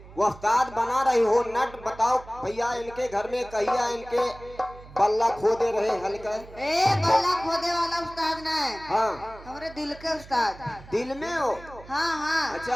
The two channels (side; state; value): right; noise; hum, 19 dB below the sound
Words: वफ्ताद बना रही हो नट। बताओ भैया, इनके घर में कहिया इनके बल्ला खोदे रहे हल्का। ए बल्ला खोदे वाला उस्ताद ना है। हाँ, हमारे दिल के उस्ताद। दिल में हो? हाँ हाँ।